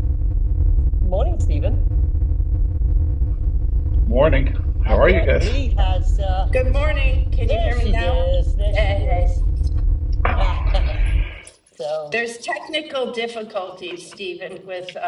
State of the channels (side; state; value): both; identical; correlation 1.00